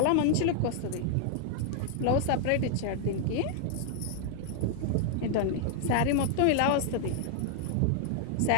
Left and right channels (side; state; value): both; different; correlation 0.00